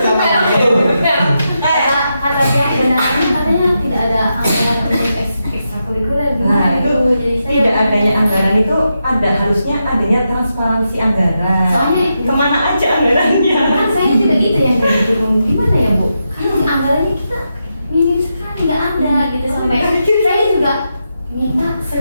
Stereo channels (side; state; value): both; inverted; correlation -0.85